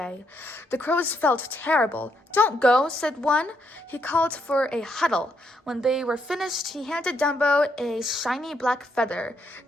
The crows felt terrible. Don't go, said one. He called for a huddle. When they were finished, he handed Dumbo a shiny black feather.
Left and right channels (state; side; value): normal; both; correlation 0.77